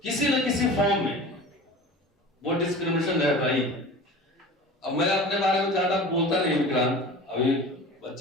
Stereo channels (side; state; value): both; normal; correlation 0.37